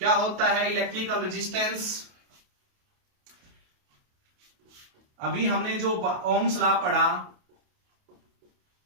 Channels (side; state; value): left; late; 28 ms